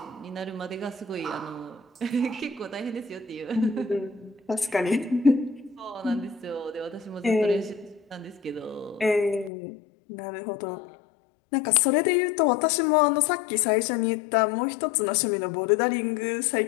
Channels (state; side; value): drops out; right; at 9.5 s